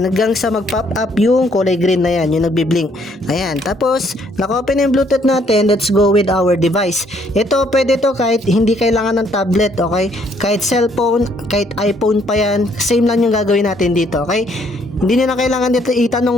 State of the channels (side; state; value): both; normal; correlation 0.66